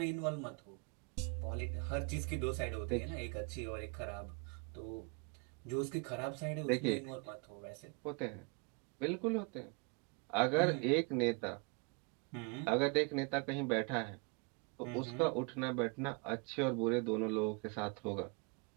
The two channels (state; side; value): quieter; left; 32.5 dB